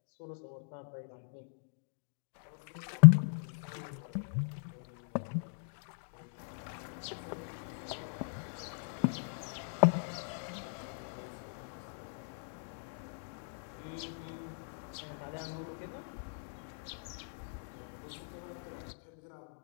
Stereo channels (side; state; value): right; silent; digital silence